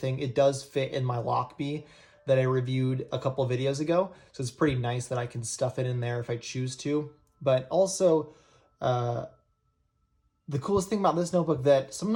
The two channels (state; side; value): identical; both; correlation 1.00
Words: It does fit in my Lockbee that I reviewed a couple videos ago, so it's pretty nice that I can stuff it in there if I choose to. But also, the coolest thing about this notebook that some